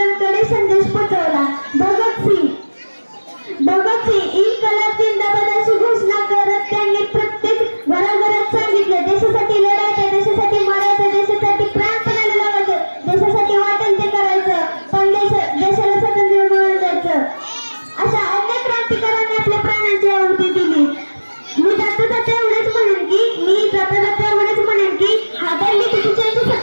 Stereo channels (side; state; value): both; inverted; correlation -1.00